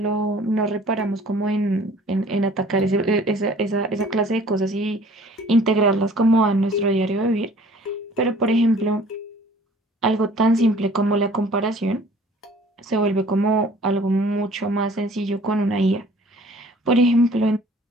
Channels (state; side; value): normal; both; correlation 0.52